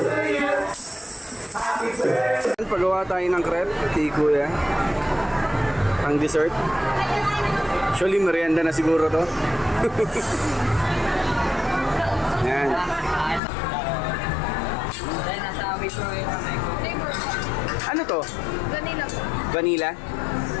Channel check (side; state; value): right; drops out; at 13.4 s